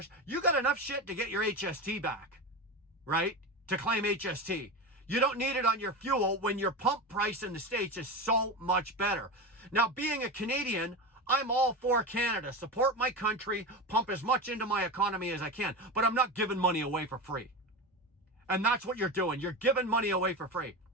you got enough shit to get your HST back, right? To claim HST. You don't need it on your fuel when your pump price in the States is so much better. Now, being a Canadian, I'm all for Canada. Support my country, pump as much into my economy as I can, but I'm not giving money away for free. And that's what you're doing. You're giving money away for free.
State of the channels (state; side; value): normal; both; correlation 0.22